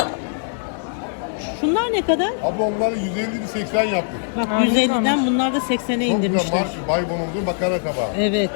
Şunlar ne kadar? Abla onları 150'li 80 yaptık. Bak Aa, ne 150'den güzelmiş. bunlar da 80'e Çok güzel indirmişler. marş, Baybonuz'un makarna tabağı. Evet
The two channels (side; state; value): right; silent; digital silence